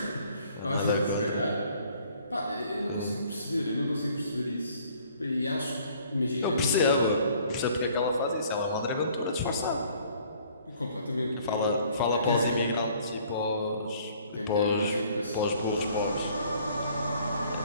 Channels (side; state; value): both; inverted; correlation -0.58